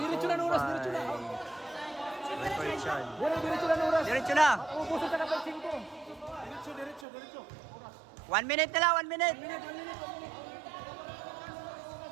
na oras, diretso na. Diretso na oras. Diretso na. Ubusan ka na pa 5. 1 minute na lang, 1 minute.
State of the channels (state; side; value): drops out; left; at 7.1 s